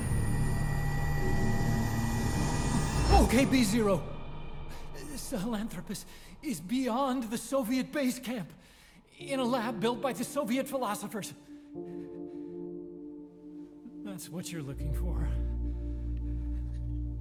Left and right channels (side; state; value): both; identical; correlation 1.00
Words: OKB-0. Sahelanthropus is beyond the Soviet base camp, in a lab built by the Soviet philosophers. That's what you're looking for.